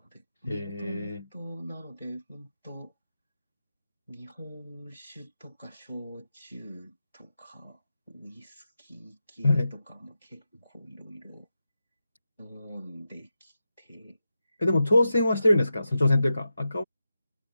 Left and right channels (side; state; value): both; inverted; correlation -0.90